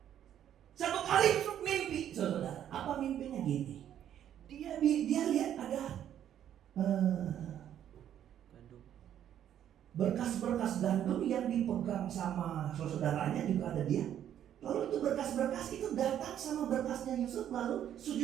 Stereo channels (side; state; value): left; quieter; 10.4 dB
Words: Satu kali Yusuf mimpi, saudara. Apa mimpinya gini? Dia lihat ada berkas-berkas gandum yang dipegang sama saudaranya, juga ada dia. Lalu itu berkas-berkas itu datang sama berkasnya Yusuf, lalu